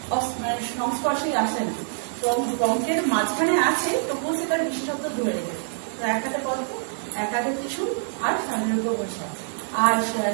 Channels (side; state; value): left; silent; digital silence